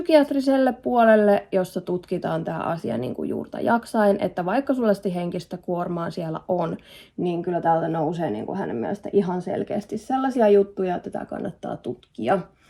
puolelle, jossa tutkitaan tämä asia niin kuin juurta jaksain, että vaikka sulla henkistä kuormaa siellä on, niin kyllä täältä nousee niin kuin hänen mielestä ihan selkeästi sellaisia juttuja, että tätä kannattaa tutkia.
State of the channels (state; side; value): identical; both; correlation 1.00